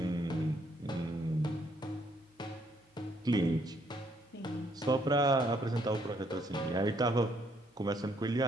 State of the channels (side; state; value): both; normal; correlation 0.69